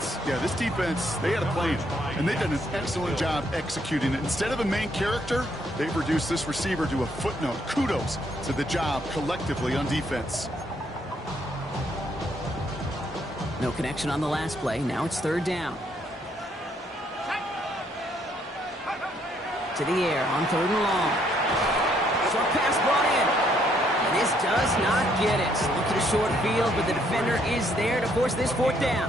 defense, they had a plan, and they did an excellent job executing it. Instead of a main character, they've reduced this receiver to a footnote. Kudos to the job collectively on defense. No connection on the last play. Now it's 3rd down. To the air on 3rd and long. Short pass brought in. And this does not get it. Look at a short field, but the defender is there to force this 4th down.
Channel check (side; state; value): both; normal; correlation 0.70